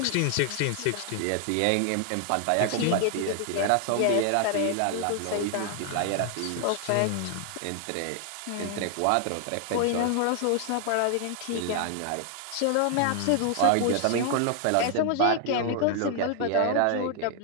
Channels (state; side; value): different; both; correlation 0.00